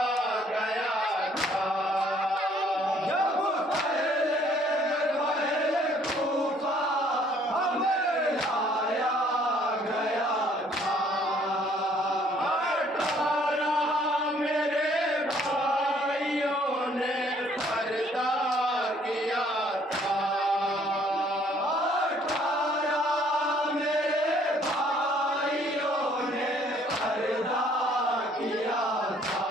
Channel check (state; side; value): normal; both; correlation 0.61